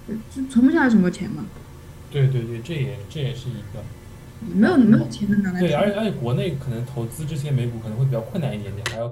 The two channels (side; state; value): both; identical; correlation 1.00